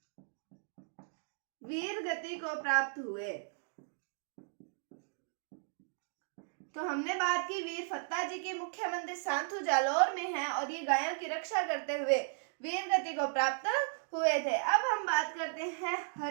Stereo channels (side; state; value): left; silent; digital silence